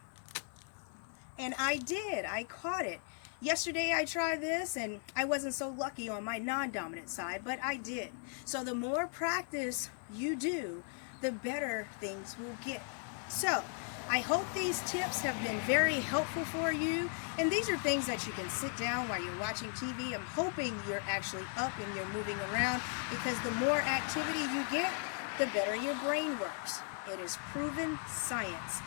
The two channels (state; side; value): silent; right; 53 dB below the other